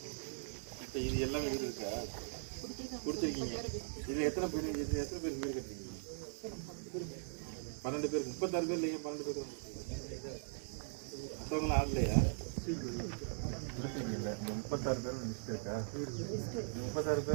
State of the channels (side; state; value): left; silent; 51 dB below the other